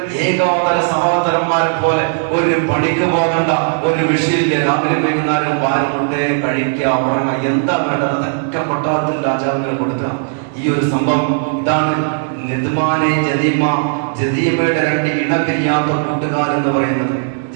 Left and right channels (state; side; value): silent; left; digital silence